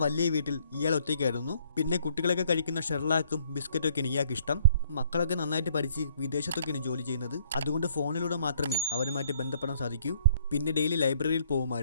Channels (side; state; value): both; inverted; correlation -0.63